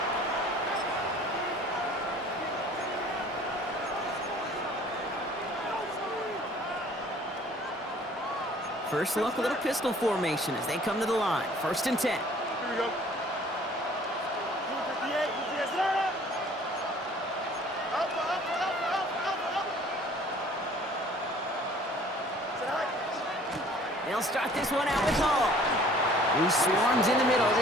First look, a little pistol formation as they come to the line. 1st and 10. Here we go. 58, They'll start this one out with Hall. He swarms in the middle.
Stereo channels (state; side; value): normal; both; correlation 0.53